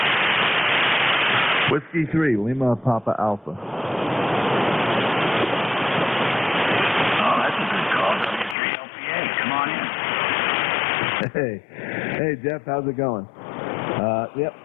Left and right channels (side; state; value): right; drops out; at 8.6 s